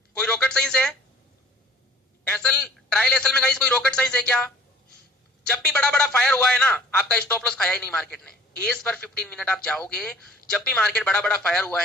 कोई रॉकेट साइंस है एसल, ट्रायल एसल में गाइस कोई रॉकेट साइंस है क्या? जब भी बड़ा बड़ा फायर हुआ है ना, आपका स्टॉप लॉस खाया ही नहीं मार्केट ने। एस पर 15 मिनट आप जाओगे, जब भी मार्केट बड़ा बड़ा फायर हुआ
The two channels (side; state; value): both; normal; correlation 0.50